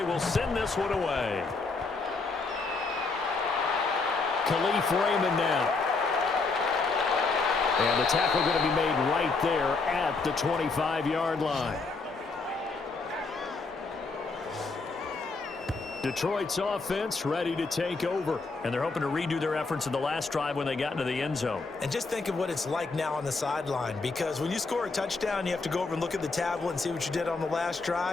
will send this one away. Khalif Raymond now. And the tackle going to be made right there at the 25-yard line. Detroit's offense ready to take over. And they're hoping to redo their efforts in the last drive when they got into the end zone. And just think of what it's like now on the sideline, because when you score a touchdown, you have to go over and look at the tablet and see what you did on the last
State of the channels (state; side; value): quieter; right; 4.0 dB